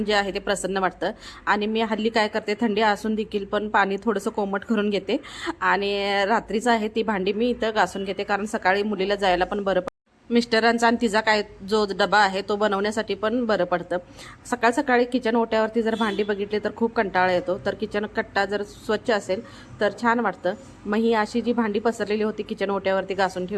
जे आहे ते प्रसन्न वाटतं। आणि मी हल्ली काय करते, थंडी असून देखील पण पाणी थोडंसं कोमट करून घेते आणि रात्रीचं आहे ती भांडी मी इथं घासून घेते, कारण सकाळी मुलीला जायला पण बरं मिस्टरांचा आणि तिचा काय जो डबा आहे तो बनवण्यासाठी पण बरं पडतं। सकाळी किचन ओट्यावरती जर भांडी बघितली तर खूप कंटाळा येतो, तर किचन कट्टा जर स्वच्छ असेल तर छान वाटतं। मग ही अशी जी भांडी पसरलेली होती किचन ओट्यावरती घासून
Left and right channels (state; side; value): identical; both; correlation 1.00